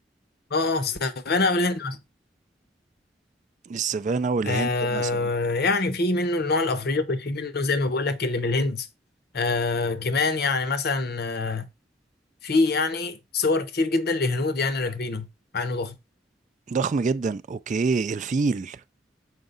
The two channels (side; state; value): both; normal; correlation 0.36